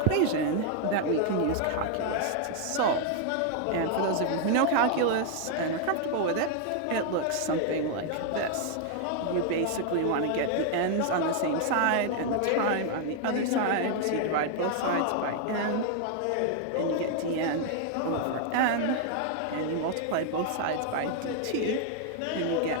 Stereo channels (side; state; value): both; different; correlation 0.00